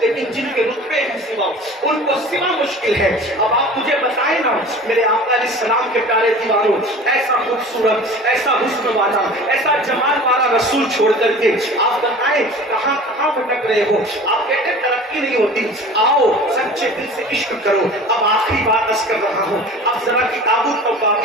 جن کے رتبے ہیں سوا ان کو سوا مشکل ہے۔ اب آپ مجھے بتائیں نا میرے آقا علیہ السلام کے پیارے دیواروں، ایسا خوبصورت، ایسا حسن والا، ایسا جمال والا رسول چھوڑ کر کے آپ بتائیں کہاں کہاں بھٹک رہے ہو؟ آپ کہتے ہیں ترقی نہیں ہوتی، آؤ سچے دل سے عشق کرو۔ اب آخری بات عرض کر رہا ہوں، اب ذرا کتابوں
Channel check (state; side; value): normal; both; correlation 0.41